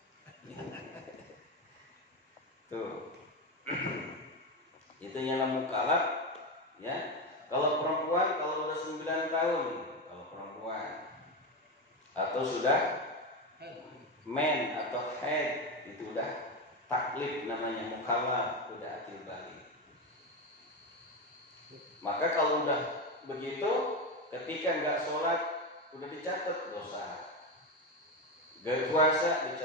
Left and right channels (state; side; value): normal; both; correlation 0.14